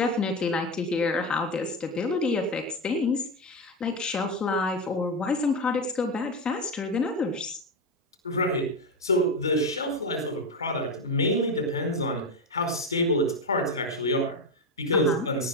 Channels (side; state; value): both; normal; correlation 0.14